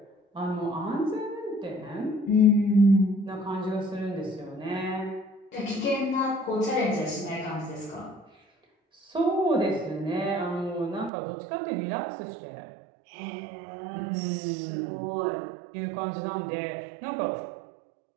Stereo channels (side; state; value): left; drops out; at 11.1 s